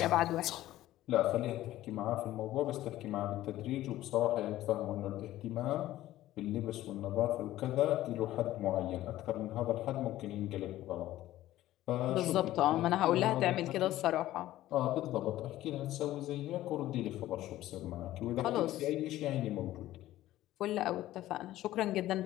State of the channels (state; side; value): quieter; right; 14.8 dB